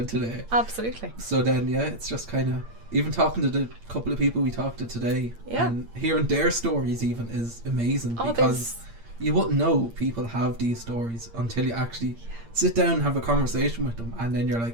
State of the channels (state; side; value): late; left; 8.7 ms